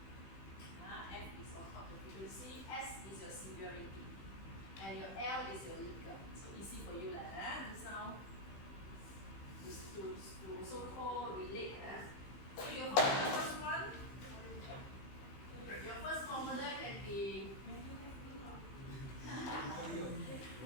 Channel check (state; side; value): late; right; 15 ms